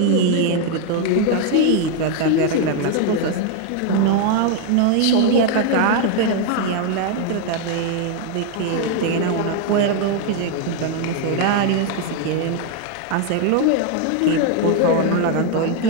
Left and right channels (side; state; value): both; different; correlation 0.01